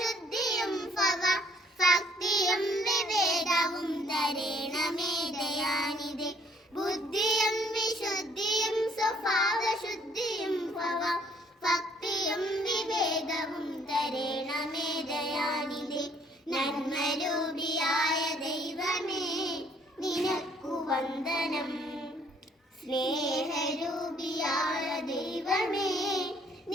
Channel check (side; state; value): both; normal; correlation 0.62